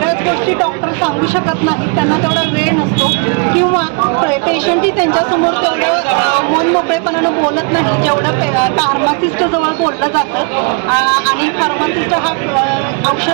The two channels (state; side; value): quieter; left; 36.2 dB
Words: गोष्टी डॉक्टर सांगू शकत नाही, त्यांना तेवढा वेळ नसतो किंवा पेशंटही त्यांच्यासमोर तेवढं मन मोकळेपणानं बोलत नाही जेवढं फार्मासिस्ट जवळ बोललं जातं। आणि फार्मासिस्ट हा